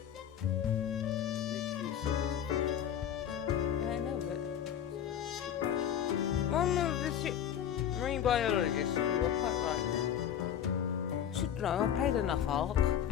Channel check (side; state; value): right; quieter; 9.6 dB